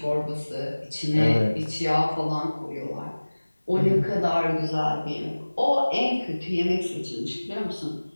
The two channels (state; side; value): inverted; both; correlation -1.00